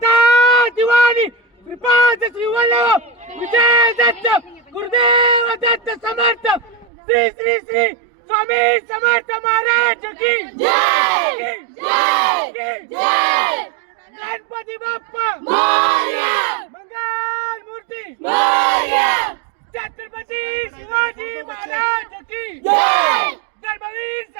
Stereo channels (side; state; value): left; drops out; at 6.9 s